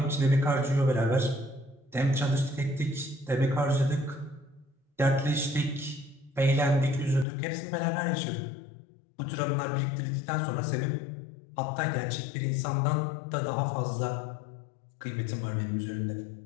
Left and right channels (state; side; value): drops out; right; at 7.2 s